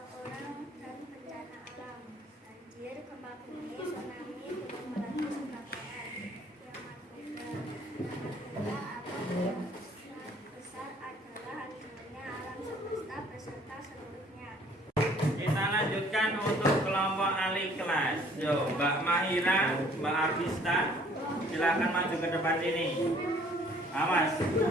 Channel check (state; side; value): normal; both; correlation 0.58